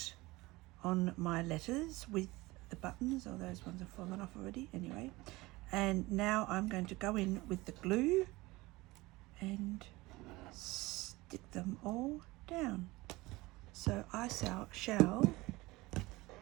on my letters with the buttons. Oh, those ones have fallen off already anyway. And now I'm going to go in with the glue and stick them all down. So I shall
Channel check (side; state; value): left; quieter; 20.9 dB